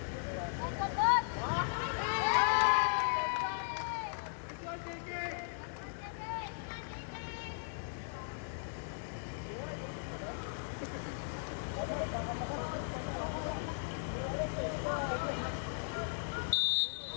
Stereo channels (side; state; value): right; silent; digital silence